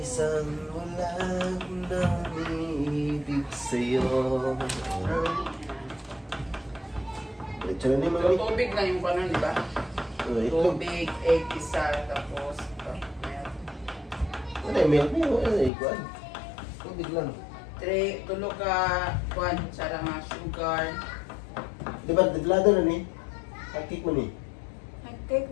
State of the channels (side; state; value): right; drops out; at 15.7 s